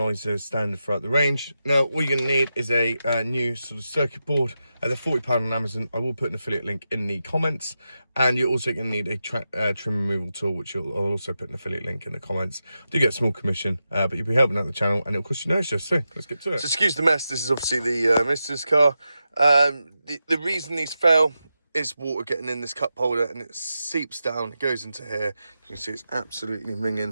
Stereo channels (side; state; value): both; inverted; correlation -0.90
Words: is standard throughout the range. Now, all you're going to need is a new sort of circuit board. They're £40 on Amazon. I will put an affiliate link in the comments, and you're also going to need a trim removal tool, which I'll also put an affiliate link in the comments. Do get a small commission, but you'll be helping out the channel, and it'll cost you no extra. So let's get to it. So excuse the mess. This is obviously the Mister's car. The reason these fell is water getting in this cup holder, and it seeps down, it goes into here. You can see it's absolutely